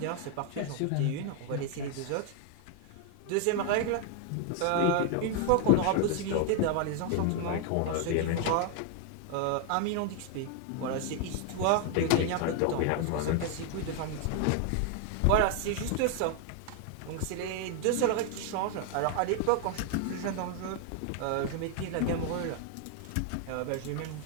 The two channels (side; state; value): both; different; correlation 0.00